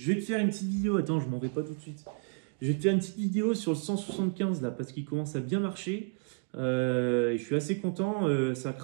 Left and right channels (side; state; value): left; quieter; 36.1 dB